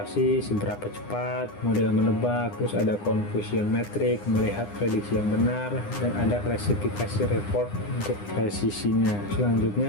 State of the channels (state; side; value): late; right; 9.8 ms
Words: seberapa cepat model menebak, terus ada confusion metric, melihat prediksi yang benar, dan ada klasifikasi report untuk presisinya.